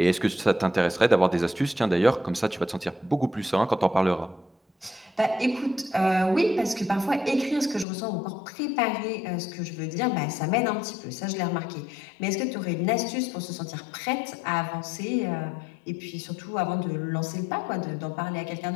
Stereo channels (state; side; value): drops out; right; at 7.9 s